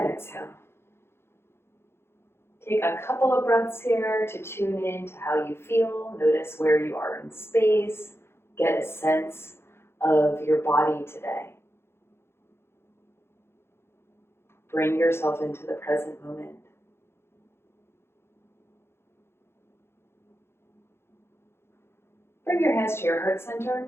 exhale. Take a couple of breaths here to tune in to how you feel. Notice where you are in space. Get a sense of your body today. Bring yourself into the present moment. Bring your hands to your heart center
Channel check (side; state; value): right; late; 0.12 ms